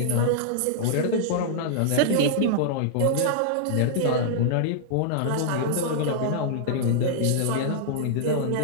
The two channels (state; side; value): different; both; correlation -0.01